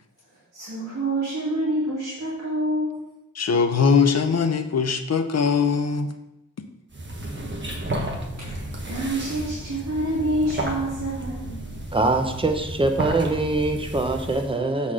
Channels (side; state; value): both; normal; correlation 0.38